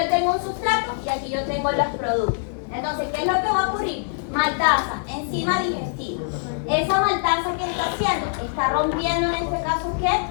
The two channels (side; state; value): right; silent; digital silence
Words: tengo un sustrato y aquí yo tengo los productos. Entonces, ¿qué es lo que va a ocurrir? Maltasa, enzima digestiva. Esa maltasa que está haciendo, está rompiendo en este caso, ¿qué?